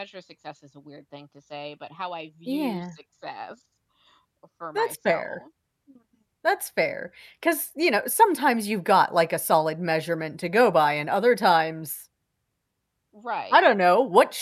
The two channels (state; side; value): identical; both; correlation 1.00